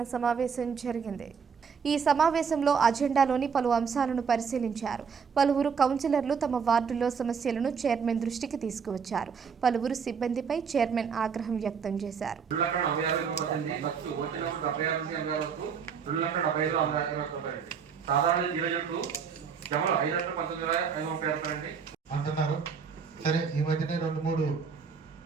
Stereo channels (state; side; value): quieter; left; 6.3 dB